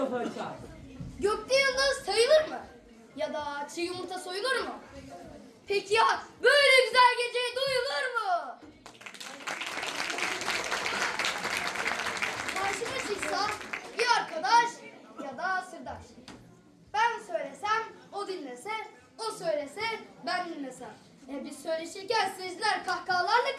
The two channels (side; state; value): both; identical; correlation 1.00